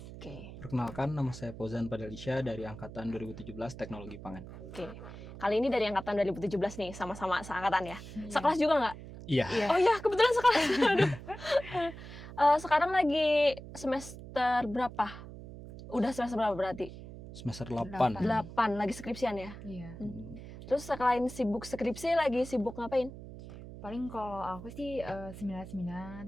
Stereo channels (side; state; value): right; noise; hum, 13 dB below the sound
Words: Oke. Perkenalkan, nama saya Fauzan Padalisya dari Angkatan 2017 Teknologi Pangan. Oke. Kali ini dari Angkatan 2017 nih, sama-sama seangkatan ya. Iya. Sekelas juga nggak? Iya. Iya. Oh iya, kebetulan sekelas. Aduh. Sekarang lagi semester berapa? Udah semester berapa berarti? Semester 8. 8, lagi skripsian ya? Iya. Terus selain sibuk skripsi, lagi sibuk ngapain? Paling kalau aku sih seminar-seminar,